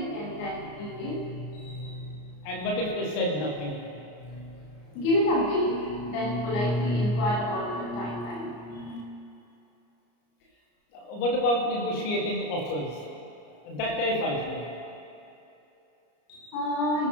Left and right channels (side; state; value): right; late; 34 ms